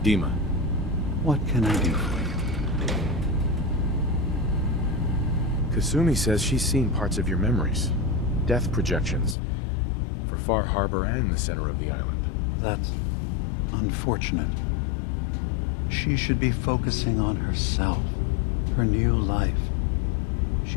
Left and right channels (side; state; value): right; drops out; at 9.3 s